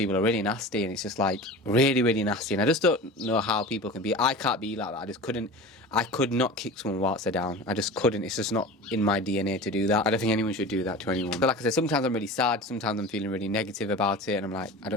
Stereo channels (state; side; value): normal; both; correlation 0.34